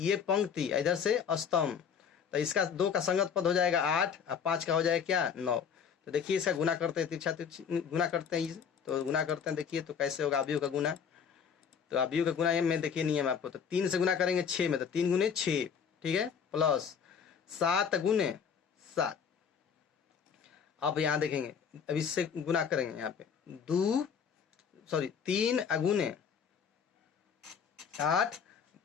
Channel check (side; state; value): right; quieter; 7.0 dB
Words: पंक्ति इधर से स्तंभ, तो इसका 2 का संगत पद हो जाएगा 8 और 5 का हो जाएगा क्या 9। तो देखिए इसका गुना करते हैं, तिरछा गुना करते हैं, तो गुना करते हैं। देखिए तो कैसे होगा अभियु का गुना। तो अभियु का गुना में देखिए नियम आपको, तो 3 से गुना करेंगे 6 में, तो 3 गुने 6, ठीक है, प्लस 7 गुने 7। अब यहाँ देखेंगे, अब इससे गुना करेंगे यहाँ पे 3 अगुने 8